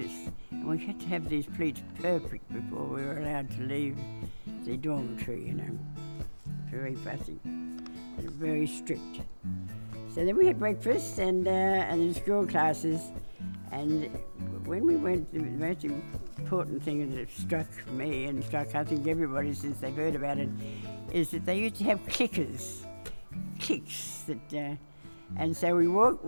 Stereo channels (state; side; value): inverted; both; correlation -1.00